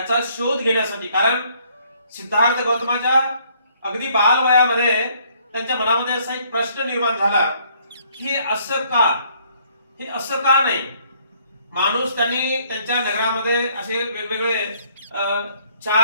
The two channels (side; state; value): both; inverted; correlation -0.64